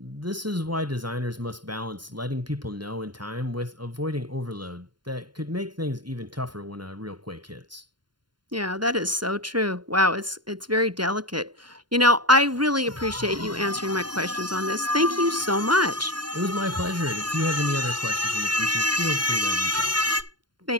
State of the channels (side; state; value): left; late; 0.71 ms